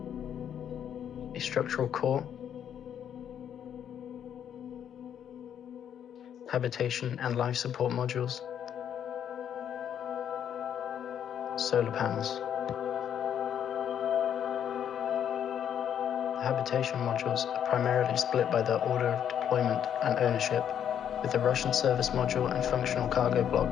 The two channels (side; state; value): right; quieter; 9.2 dB